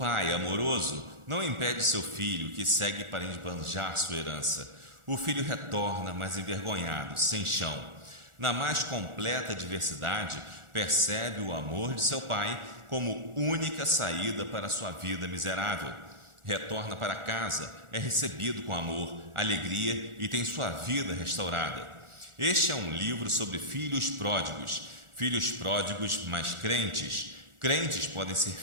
amoroso, não impede seu filho, que segue para esbanjar sua herança. O filho retorna, mas envergonhado, sem chão. Na mais completa diversidade, percebe o amor de seu pai como única saída para sua vida miserável. Retorna para casa, é recebido com amor, alegria e tem sua vida restaurada. Este é um livro sobre filhos pródigos, mas crentes. Crentes podem ser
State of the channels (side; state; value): left; late; 1.4 ms